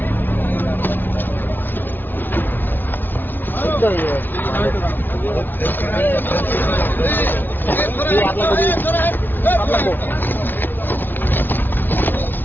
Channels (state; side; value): late; right; 0.091 ms